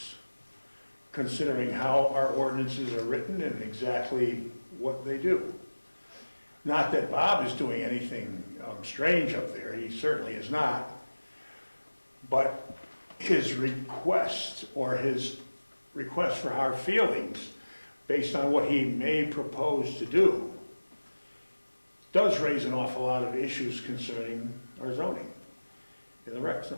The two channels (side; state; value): both; inverted; correlation -1.00